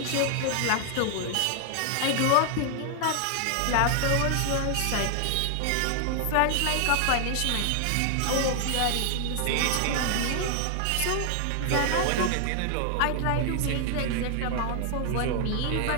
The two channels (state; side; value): different; both; correlation 0.00